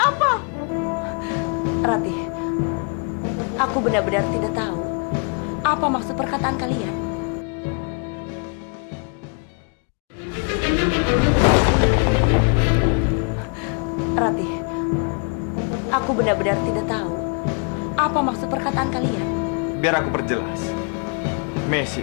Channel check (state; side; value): quieter; right; 36.9 dB